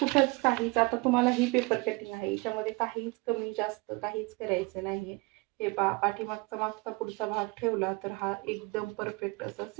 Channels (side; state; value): left; quieter; 26.2 dB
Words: काहीच, आता तुम्हाला ही पेपर कटिंग आहे याच्यामध्ये काहीच कमी जास्त काहीच करायचं नाहीये. हे पहा पाठीमागचा मागचा पुढचा भाग ठेवला तर हा एकदम परफेक्ट असा